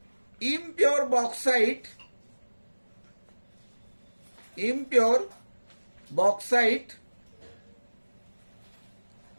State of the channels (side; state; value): both; inverted; correlation -1.00